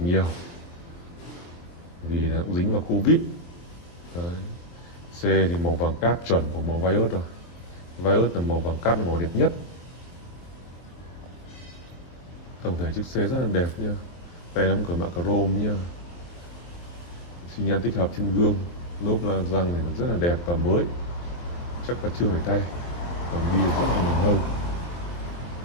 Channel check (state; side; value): late; right; 23 ms